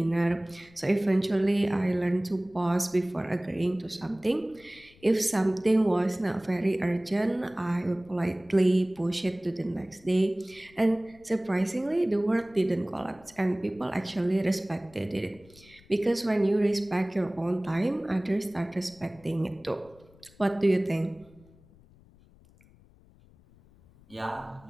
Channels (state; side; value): noise; left; rumble, 27 dB below the sound